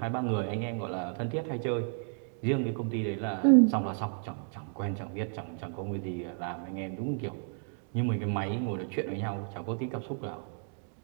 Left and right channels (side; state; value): left; silent; 56 dB below the other